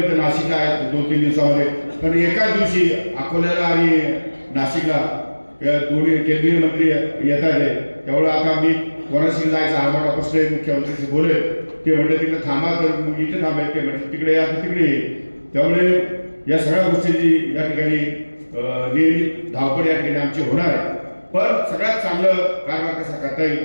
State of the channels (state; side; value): inverted; both; correlation -1.00